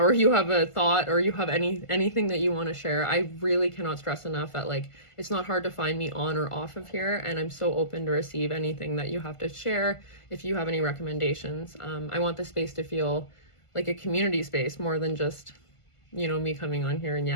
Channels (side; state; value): right; late; 1.5 ms